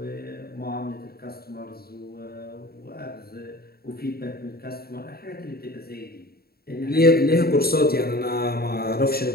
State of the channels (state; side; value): late; right; 0.45 ms